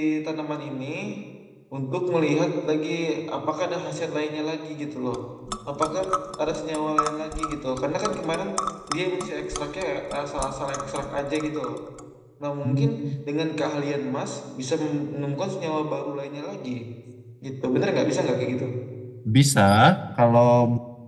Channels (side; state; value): both; identical; correlation 1.00